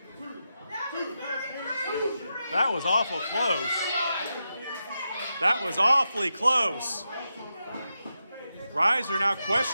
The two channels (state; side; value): inverted; both; correlation -0.88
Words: That was awful close. That was awfully close. Ryzer now